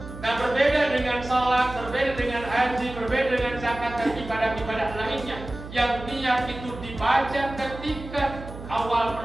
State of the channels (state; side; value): noise; right; hum, 12 dB below the sound